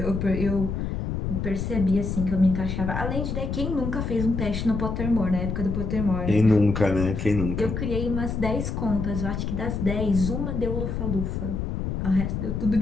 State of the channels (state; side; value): noise; left; rumble, 3 dB below the sound